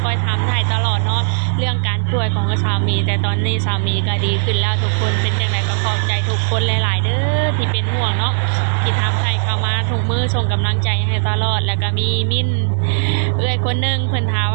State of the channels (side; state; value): left; silent; 68 dB below the other